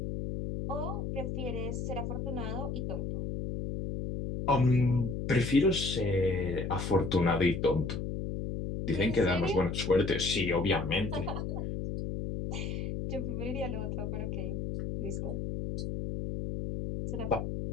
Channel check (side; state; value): left; noise; hum, 3 dB below the sound